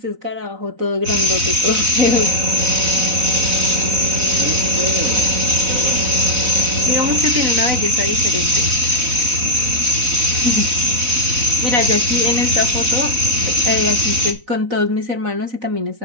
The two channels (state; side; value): late; left; 4.0 ms